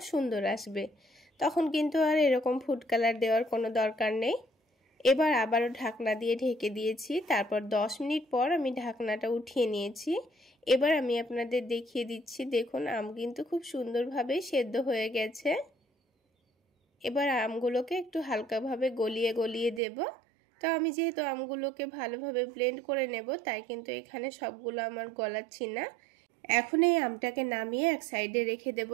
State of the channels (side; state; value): left; drops out; at 19.8 s